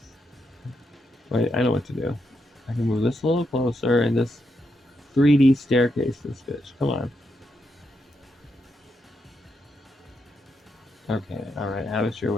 Wait, I know what to do. I can move this a little closer and this 3D staircase this bitch. Come on. Okay, alright, have it your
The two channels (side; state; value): both; normal; correlation 0.82